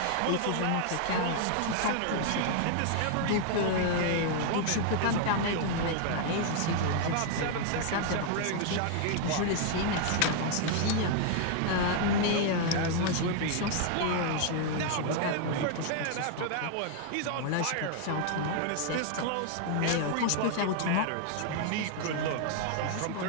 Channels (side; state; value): both; different; correlation 0.00